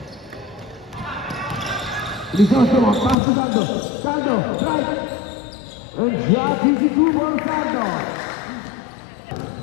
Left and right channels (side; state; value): right; drops out; at 3.2 s